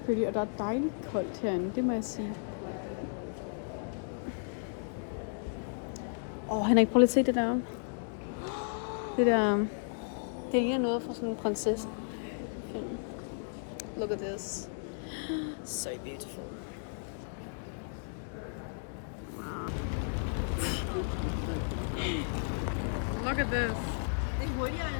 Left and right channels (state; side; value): silent; right; digital silence